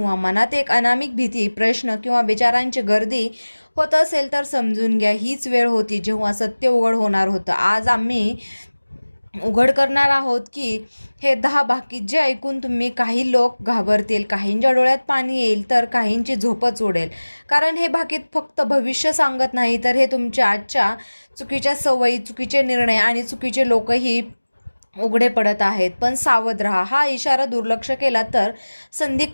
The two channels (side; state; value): both; inverted; correlation -1.00